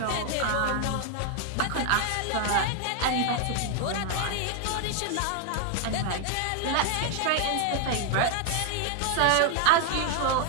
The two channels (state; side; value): different; both; correlation 0.00